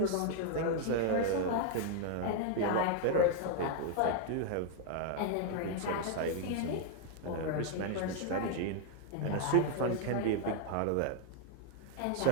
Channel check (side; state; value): both; different; correlation 0.00